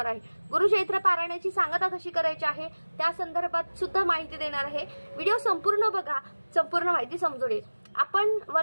आहे। गुरुचैत्र पारायणाची सांगता कशी करायची आहे त्या संदर्भात सुद्धा माहिती देणार आहे। व्हिडिओ संपूर्ण बघा, संपूर्ण माहिती समजून येईल। आपण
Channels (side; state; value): both; inverted; correlation -1.00